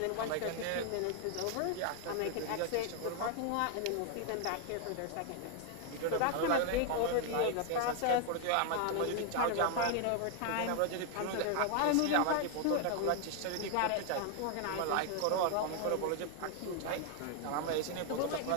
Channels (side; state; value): both; different; correlation 0.00